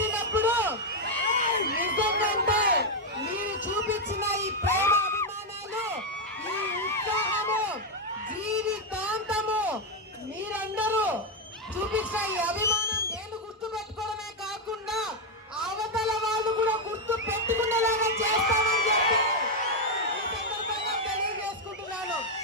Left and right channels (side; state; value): both; normal; correlation 0.02